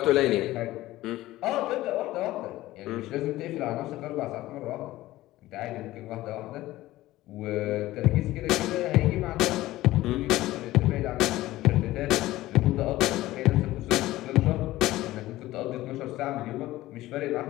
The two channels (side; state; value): right; quieter; 16.6 dB